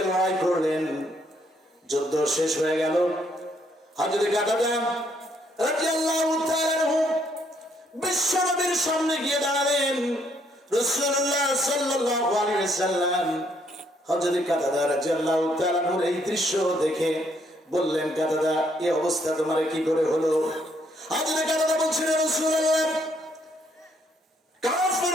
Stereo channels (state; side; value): normal; both; correlation 0.70